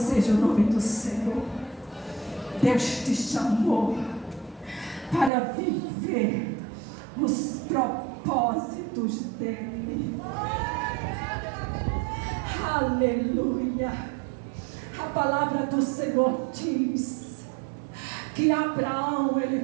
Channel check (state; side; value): drops out; left; at 5.3 s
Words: o nome do Senhor. Deus te chamou para viver os propósitos dele. Aleluia. A palavra do Senhor diz que Abraão,